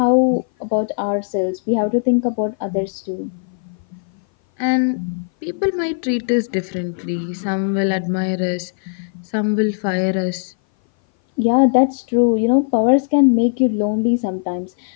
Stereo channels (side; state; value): right; silent; 58 dB below the other